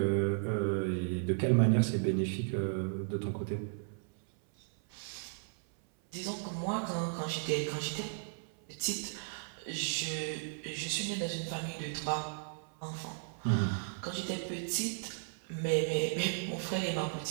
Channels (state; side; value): silent; left; 54 dB below the other